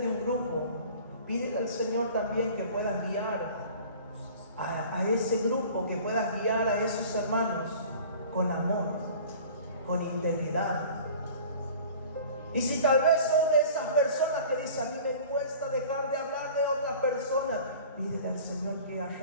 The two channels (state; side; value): inverted; both; correlation -0.44